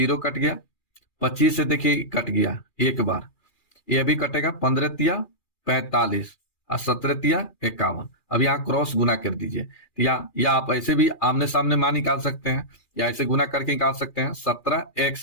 कट गया, 25 से देखिए कट गया एक बार, ये भी कटेगा, 15 तिया 45 और 17 तिया 51। अब यहाँ क्रॉस गुना कर दीजिए, या आप ऐसे भी आमने सामने मान निकाल सकते हैं, या ऐसे गुना करके निकाल सकते हैं।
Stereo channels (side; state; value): right; late; 2.4 ms